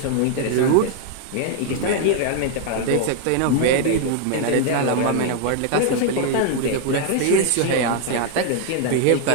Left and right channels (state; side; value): different; both; correlation 0.00